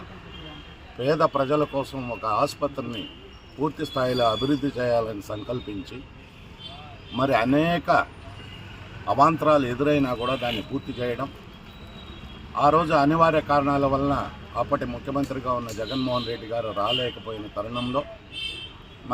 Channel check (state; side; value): identical; both; correlation 1.00